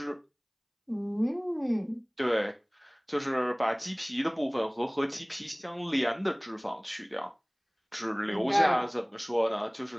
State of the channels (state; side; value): identical; both; correlation 1.00